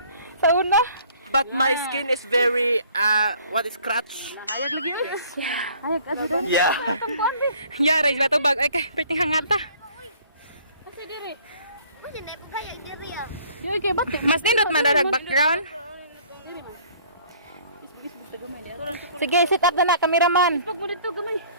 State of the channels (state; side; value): inverted; both; correlation -0.55